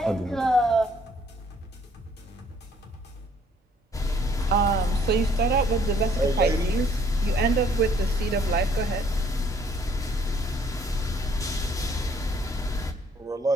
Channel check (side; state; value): both; normal; correlation 0.62